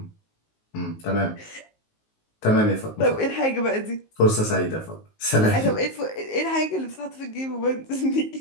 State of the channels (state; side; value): late; right; 19 ms